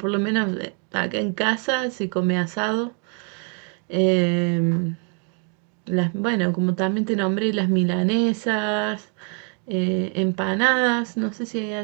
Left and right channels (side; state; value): left; quieter; 38.1 dB